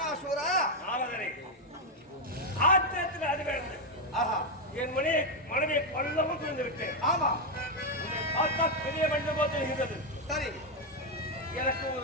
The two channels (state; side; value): normal; both; correlation 0.03